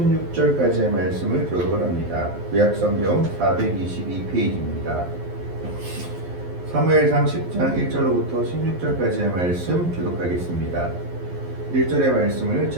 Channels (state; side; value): late; left; 11 ms